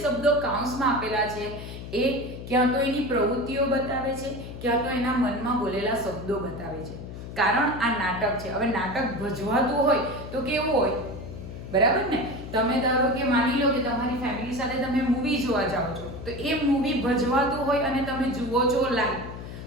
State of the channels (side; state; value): left; noise; hum, 11 dB below the sound